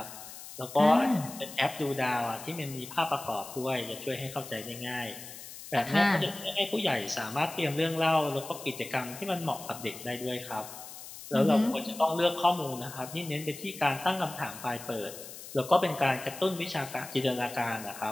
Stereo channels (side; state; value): left; noise; hiss, 13 dB below the sound